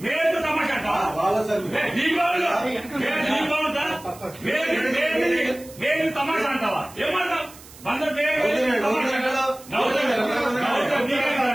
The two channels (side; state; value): right; noise; hiss, 20 dB below the sound